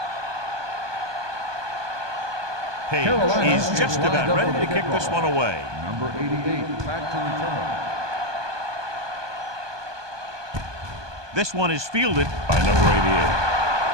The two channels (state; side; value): late; left; 1.2 ms